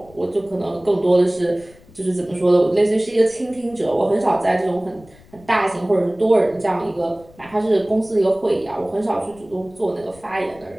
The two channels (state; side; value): noise; left; rumble, 25 dB below the sound